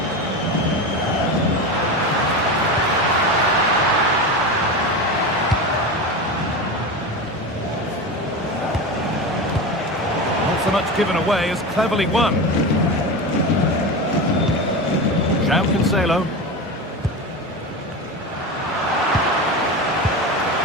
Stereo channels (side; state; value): both; normal; correlation 0.23